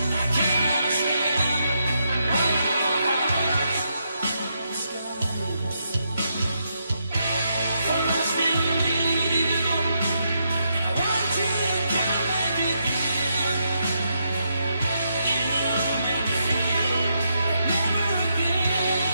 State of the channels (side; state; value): both; inverted; correlation -0.80